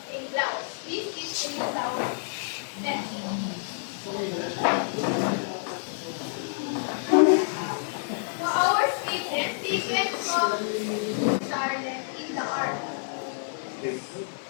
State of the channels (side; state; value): right; silent; 58 dB below the other